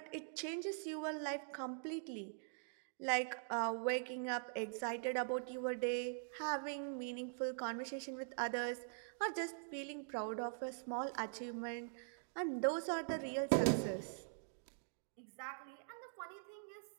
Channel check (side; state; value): left; silent; digital silence